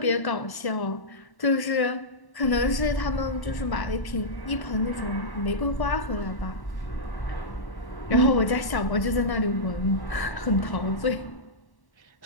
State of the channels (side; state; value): right; late; 1.1 ms